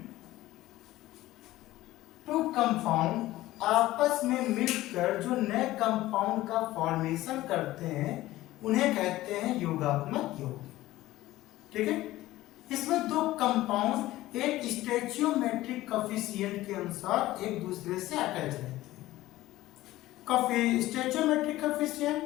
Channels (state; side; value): quieter; right; 16.4 dB